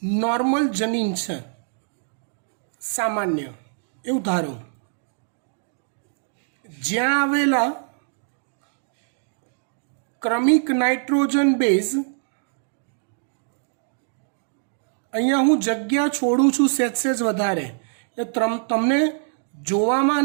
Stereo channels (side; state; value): left; silent; digital silence